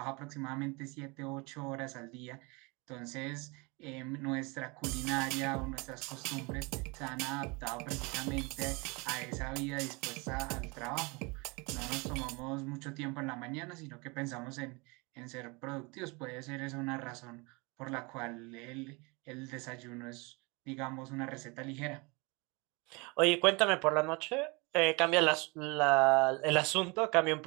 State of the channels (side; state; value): left; quieter; 28.0 dB